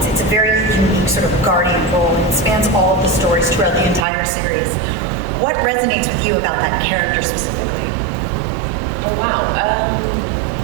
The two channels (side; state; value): left; drops out; at 4.0 s